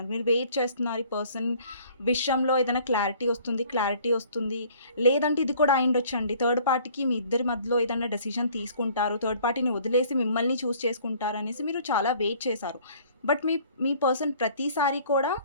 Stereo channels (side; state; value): both; inverted; correlation -0.55